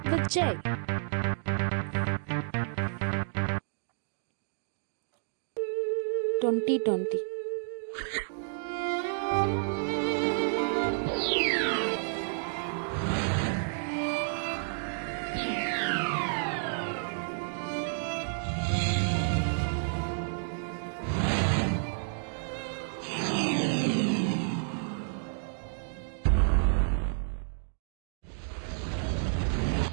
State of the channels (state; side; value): silent; left; digital silence